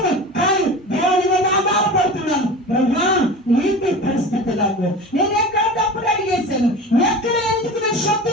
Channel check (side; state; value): both; normal; correlation 0.33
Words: కానీ దేవుని మీద ఆధారపడుతున్నాను. ఏంటి పరిస్థితి నాకు? నేను ఎక్కడ తప్పుడు అడిగేశాను? ఎక్కడ ఎందుకు నేను